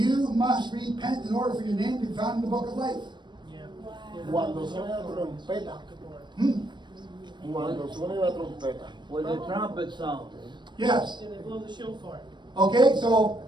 must repent in order for your name to be found in the book of life. Yeah. Cuando suene la trompeta. Cuando suene la trompeta. When the trumpet sound. Yes. And they blow the shofar. Okay, so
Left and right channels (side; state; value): left; late; 0.22 ms